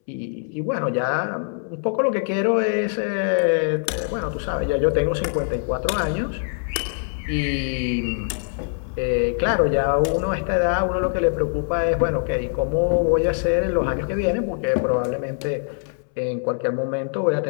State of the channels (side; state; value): right; silent; 63 dB below the other